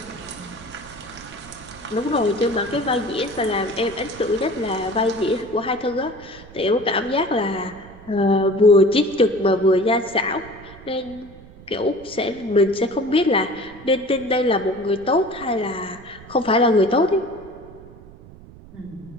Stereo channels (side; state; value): right; noise; rumble, 20 dB below the sound